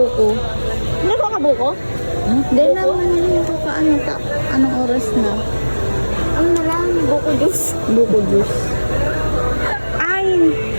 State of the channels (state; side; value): inverted; both; correlation -1.00